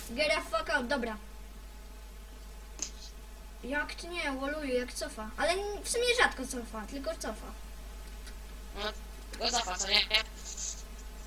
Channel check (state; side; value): identical; both; correlation 1.00